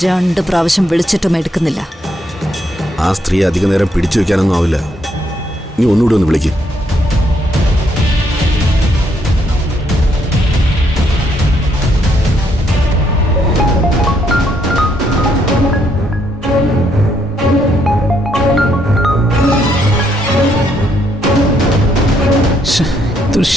2 പ്രാവശ്യം വിളിച്ചിട്ടും എടുക്കുന്നില്ല. ആ സ്ത്രീ അധിക നേരം പിടിച്ചു വെക്കാനൊന്നും ആവില്ല. നീ ഒന്നുകൂടി ഒന്ന് വിളിക്ക്. ഇതൊരു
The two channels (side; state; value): both; normal; correlation 0.73